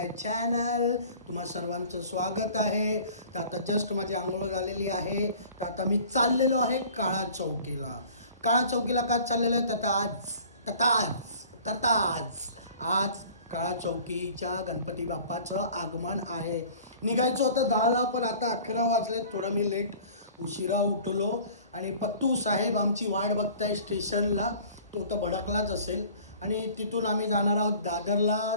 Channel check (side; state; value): both; inverted; correlation -0.47